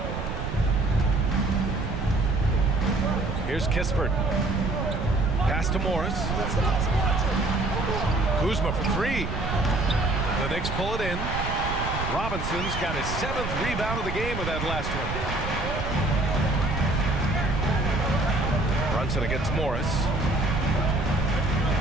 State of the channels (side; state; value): right; noise; rumble, 5 dB below the sound